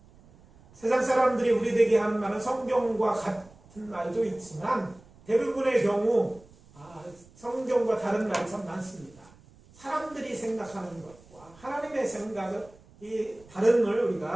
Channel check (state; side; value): noise; right; rumble, 25 dB below the sound